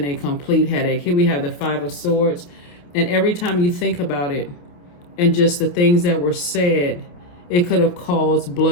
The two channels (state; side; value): late; right; 28 ms